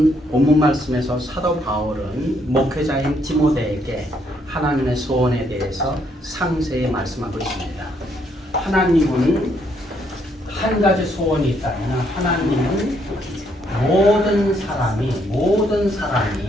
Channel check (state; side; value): normal; both; correlation 0.71